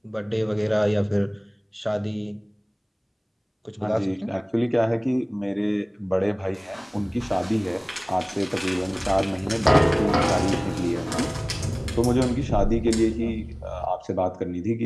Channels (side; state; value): both; identical; correlation 1.00